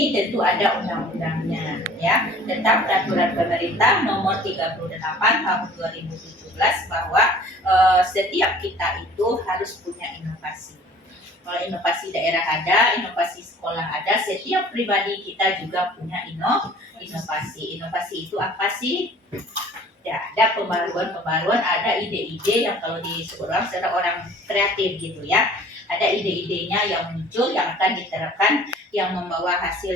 tentu ada undang-undangnya ya, tentang peraturan pemerintah nomor 38 tahun 2017 bahwa setiap kita itu harus punya inovasi. Kalau inovasi daerah ada, inovasi sekolah ada, setiap pribadi kita juga punya inovasi. Inovasi itu apa sih? Ya, ada pembaruan, ada ide-ide yang kalau disebut orang kreatif gitu ya. Ada ide-idenya yang muncul, yang akan diterapkan, yang membawa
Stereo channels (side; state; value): both; normal; correlation 0.49